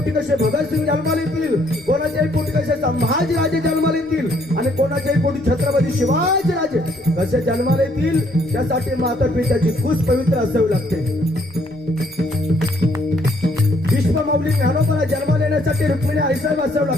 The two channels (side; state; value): left; noise; rumble, 29 dB below the sound